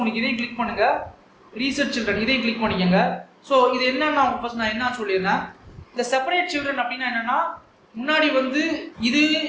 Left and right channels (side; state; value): both; identical; correlation 1.00